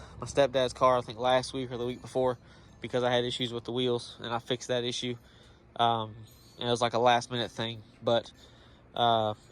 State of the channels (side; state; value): both; identical; correlation 1.00